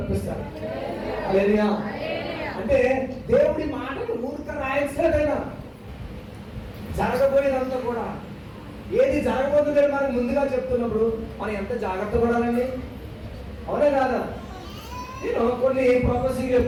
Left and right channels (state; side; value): identical; both; correlation 1.00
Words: హల్లెలూయా. అంటే దేవుడి మాటలు ఊరిక రాయట్లేదైనా జరగబోయేదంతా కూడా ఏది జరగబోతుందని మనకు ముందుగా చెప్తున్నప్పుడు మనం ఎంత జాగ్రత్త పడాలండి. అవునే కాదా? నేను కొన్ని ప్రొఫెసింగ్